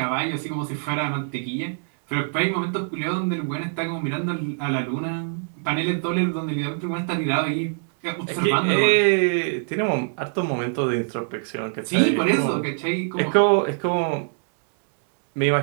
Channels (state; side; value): silent; left; digital silence